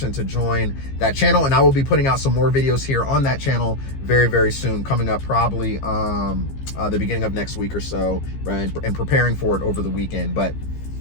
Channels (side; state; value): right; late; 15 ms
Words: to join that channel, and I will be putting out some more videos here on that channel very, very soon, coming up probably the beginning of next week or so, right? And preparing for it over the weekend. But